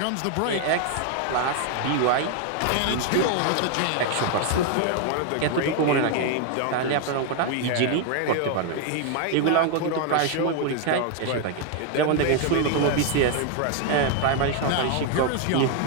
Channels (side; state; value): both; different; correlation 0.00